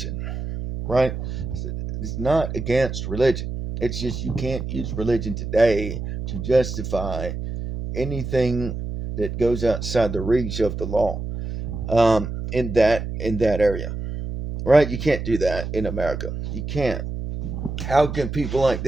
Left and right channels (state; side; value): noise; right; hum, 6 dB below the sound